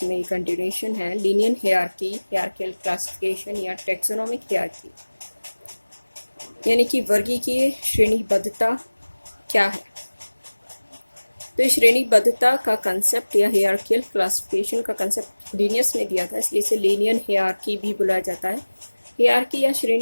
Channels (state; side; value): inverted; both; correlation -1.00